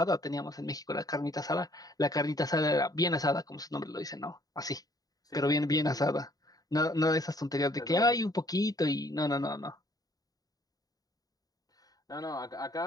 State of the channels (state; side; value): late; right; 0.18 ms